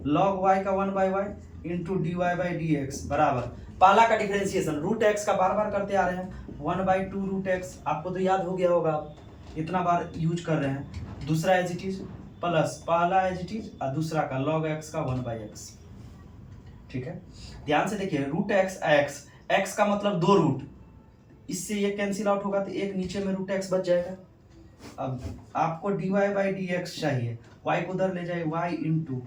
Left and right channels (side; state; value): both; identical; correlation 1.00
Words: log y का 1 by y into dy by dx बराबर, पहला का डिफरेंशिएशन रूट x का बार बार करते आ रहे हैं, 1 बाई 2 रूट x, आपको तो याद हो गया होगा, इतना बार यूज कर रहे हैं। दूसरा एज इट इज प्लस पहला एज इट इज और दूसरा का log x का 1 बाई एक्स, ठीक है। ध्यान से देखिए, रूट x का मतलब 2 रूट, इससे ये कैंसिल आउट होगा तो एक नीचे में रूट x बच जाएगा। अब आपको dy बाई dx चाहिए, y को उधर ले जाए, y इंटू